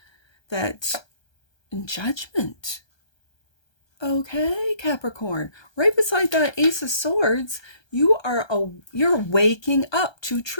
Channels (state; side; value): late; right; 1.3 ms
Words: That Judgment. Okay, Capricorn. Right beside that Ace of Swords, you're waking up to